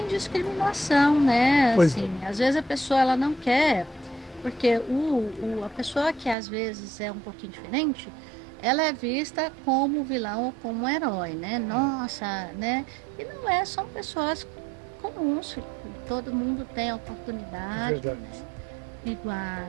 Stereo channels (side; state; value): left; drops out; at 6.4 s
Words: discriminação, né? Assim, às vezes a pessoa ela não quer, porque a pessoa que às vezes é um pouquinho diferente, ela é vista como vilão ou como um herói, né? Nossa, né? E não é, são pessoas comuns, todo mundo tem a É oportunidade, verdade. né?